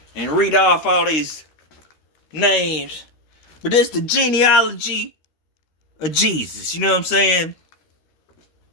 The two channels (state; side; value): late; right; 13 ms